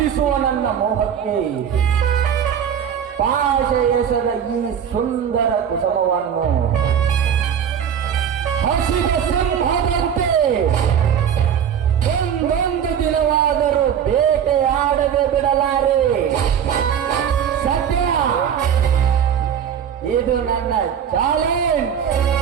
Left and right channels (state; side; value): quieter; left; 8.5 dB